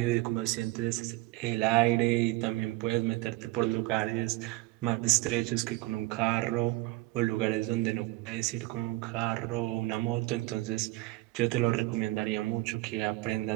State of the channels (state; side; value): quieter; left; 19.6 dB